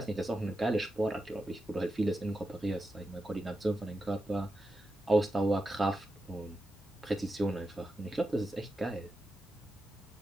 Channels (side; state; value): both; normal; correlation 0.89